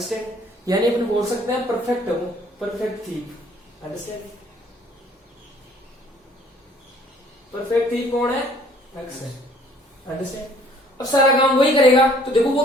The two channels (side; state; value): both; normal; correlation 0.58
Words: यानी अपन बोल सकते हैं परफेक्ट है वो, perfect thief, understand. Perfect thief कौन है, अक्स है, अंडरस्टैंड. अब सारा काम वही करेगा. तो देखो वो